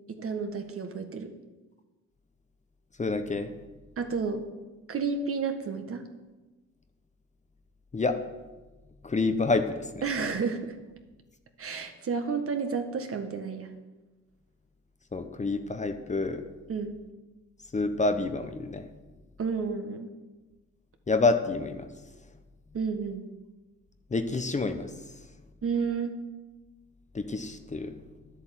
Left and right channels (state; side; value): normal; both; correlation 0.35